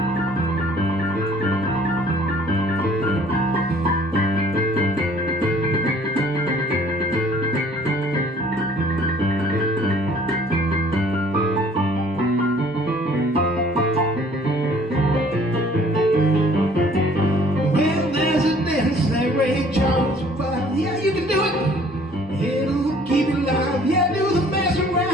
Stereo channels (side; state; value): both; normal; correlation 0.56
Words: Yeah, you can do it. It'll keep you alive. Yeah, do the mess